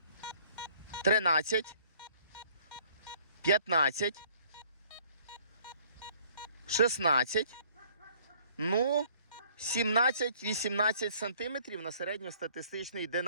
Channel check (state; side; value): inverted; both; correlation -0.57